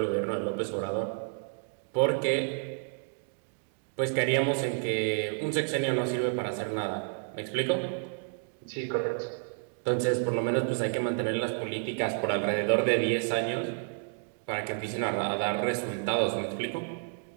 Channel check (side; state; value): left; silent; 58 dB below the other